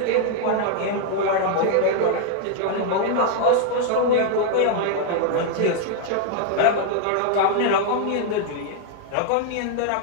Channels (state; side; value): different; both; correlation 0.00